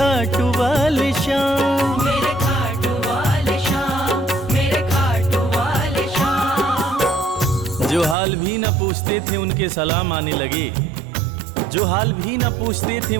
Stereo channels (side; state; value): left; drops out; at 8.2 s